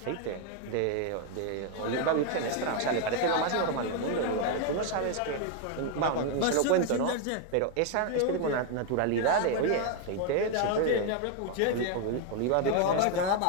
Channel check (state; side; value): different; both; correlation 0.01